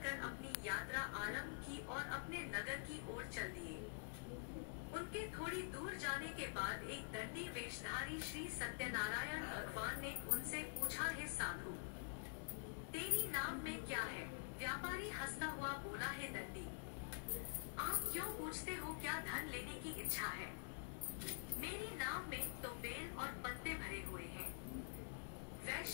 कर अपनी यात्रा आरंभ की और अपने नगर की ओर चल दिए। उनके थोड़ी दूर जाने के बाद एक दंडी वेशधारी श्री सत्यनारायण भगवान ने उनसे पूछा, हे साधु, तेरी नाम में क्या है? व्यापारी हंसता हुआ बोला, हे दंडी, आप क्यों पूछते हो? क्या धन लेने की इच्छा है? मेरी नाव में तो बेल और पत्ते भरे हुए हैं।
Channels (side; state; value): right; silent; digital silence